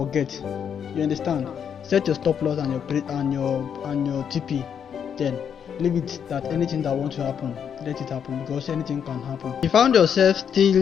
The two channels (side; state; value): right; quieter; 7.9 dB